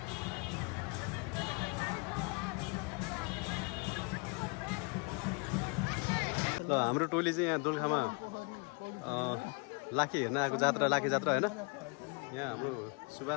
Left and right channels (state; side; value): quieter; right; 32.3 dB